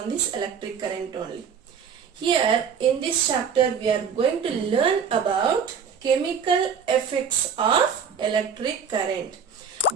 this electric current only. Here in this chapter we are going to learn about chemical effects of electric current.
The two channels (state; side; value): quieter; left; 6.7 dB